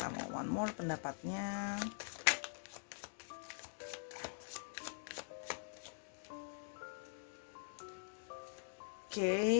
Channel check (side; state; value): right; silent; digital silence